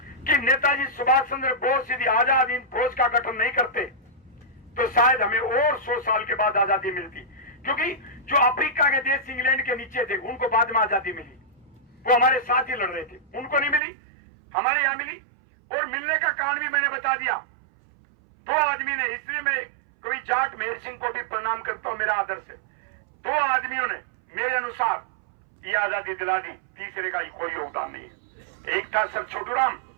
कि नेताजी सुभाष चंद्र बोस यदि आजाद हिंद फौज का गठन नहीं करते तो शायद हमें और 100 साल के बाद आजादी मिलती। क्योंकि जो अफ्रीका के देश इंग्लैंड के नीचे थे, उनको बाद में आजादी मिली, वो हमारे साथ ही लड़ रहे थे, उनको नहीं मिली, हमारे यहां मिली। और मिलने का कारण भी मैंने बता दिया। 2 आदमी ने, इसलिए मैं कभी जाट मेहर सिंह को भी प्रणाम करता हूं, मेरा आदर्श है। 2 आदमियों ने मेरे अनुसार ये आजादी दिला दी, तीसरे का कोई योगदान नहीं है। एक था सर छोटू राम,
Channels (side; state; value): left; drops out; at 13.8 s